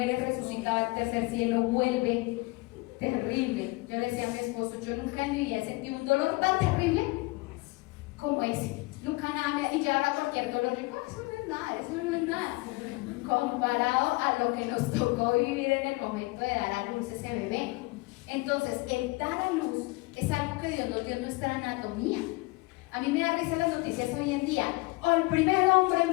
resucita al tercer cielo, vuelve terrible. Yo le decía a mi esposo, yo nunca en mi vida he sentido un dolor tan terrible como ese, nunca nada, y ya ahora cualquier dolor, digo, eso no es nada, comparado a lo que nos tocó vivir en el momento de dar a luz ese bebé. Entonces, el dar a luz es algo que Dios nos dio en nuestra anatomía. A mí me da risa las noticias hoy en día. El primer hombre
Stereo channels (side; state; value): right; quieter; 23.9 dB